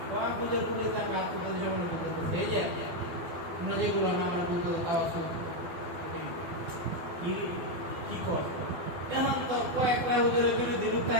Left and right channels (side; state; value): left; late; 12 ms